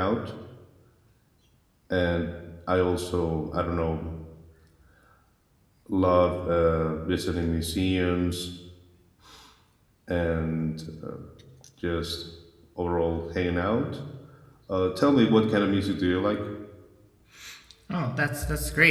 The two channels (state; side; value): identical; both; correlation 1.00